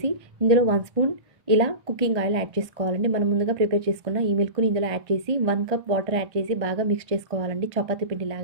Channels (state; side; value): late; left; 1.6 ms